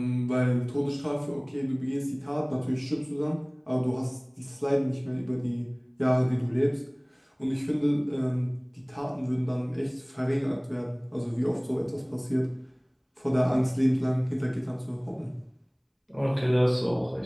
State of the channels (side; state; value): both; identical; correlation 1.00